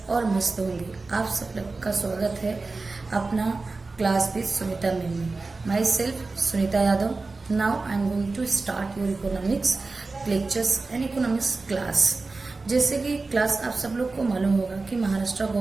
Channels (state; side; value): quieter; left; 3.7 dB